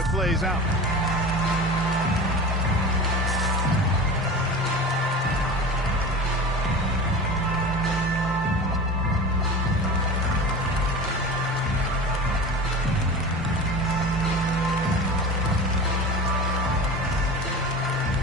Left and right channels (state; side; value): normal; both; correlation 0.33